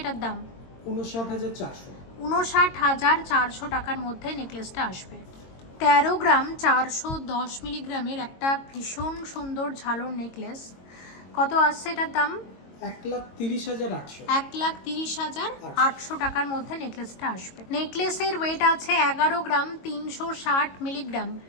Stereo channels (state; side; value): late; right; 22 ms